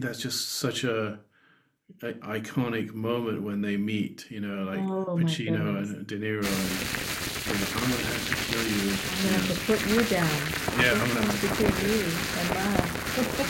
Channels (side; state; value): both; identical; correlation 1.00